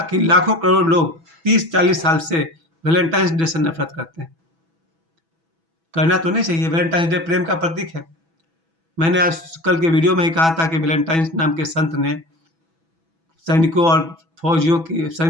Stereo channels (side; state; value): left; late; 6.1 ms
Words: कि लाखों करोड़ लोग 30-40 साल से वैलेंटाइंस डे से नफरत करते हैं। करना तो नहीं चाहिए, वैलेंटाइंस डे प्रेम का प्रतीक है। मैंने आज कल के वीडियो में ही कहा था कि वैलेंटाइंस नाम के संत ने सैनिकों और